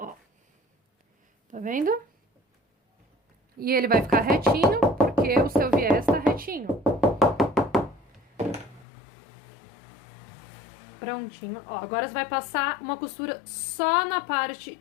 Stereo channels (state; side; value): drops out; right; at 8.8 s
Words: Tá vendo? E ele vai ficar retinho, porque o seu viés tá retinho. Prontinho. Ó, agora você vai passar uma costura só na parte